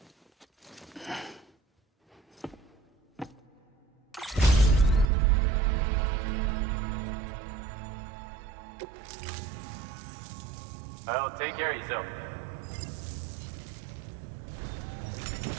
Well, take care of yourself.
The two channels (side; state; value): left; drops out; at 5.1 s